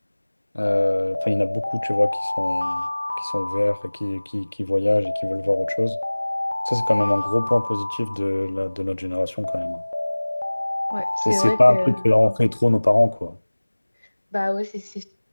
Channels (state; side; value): inverted; both; correlation -1.00